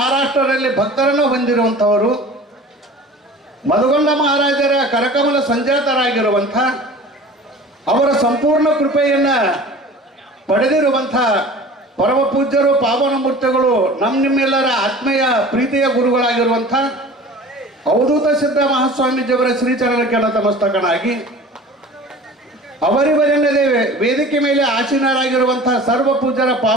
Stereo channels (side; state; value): both; normal; correlation 0.42